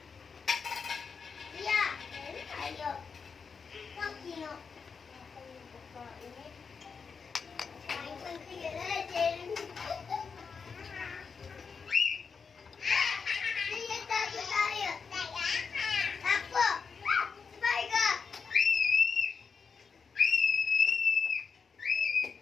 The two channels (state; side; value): quieter; right; 5.6 dB